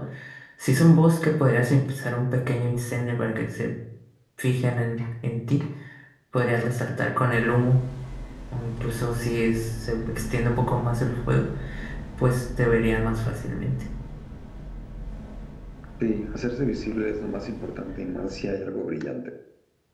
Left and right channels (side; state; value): both; identical; correlation 1.00